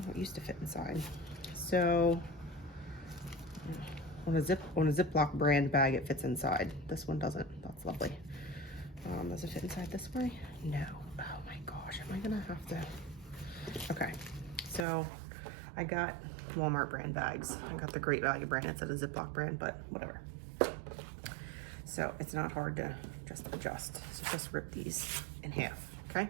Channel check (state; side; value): drops out; left; at 14.9 s